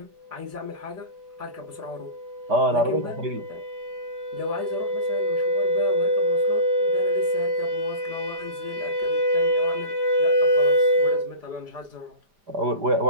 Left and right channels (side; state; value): left; late; 4.9 ms